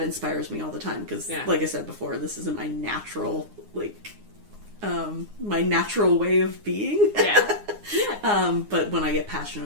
inspires me all the time. Because, like I said before, this isn't my natural, my natural way of being. Yeah. But when I get passionate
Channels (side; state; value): left; late; 9.7 ms